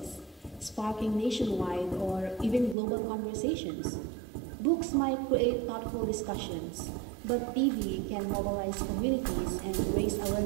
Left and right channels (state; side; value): drops out; left; at 2.8 s